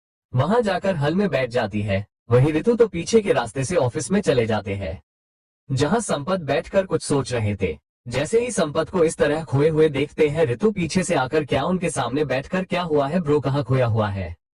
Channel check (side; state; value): both; identical; correlation 1.00